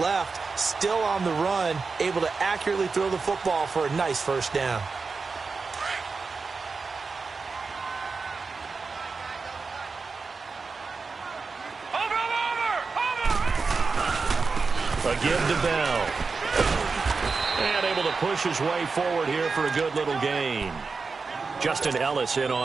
still on the run, able to accurately throw the football for a nice first down. A give to Bell. And able to push his way forward here for a good little gain. Justin Ellis in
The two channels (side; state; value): left; quieter; 4.5 dB